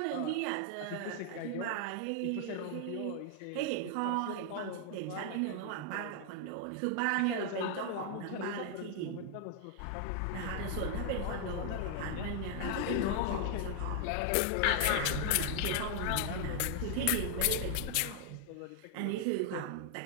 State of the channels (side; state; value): both; different; correlation 0.00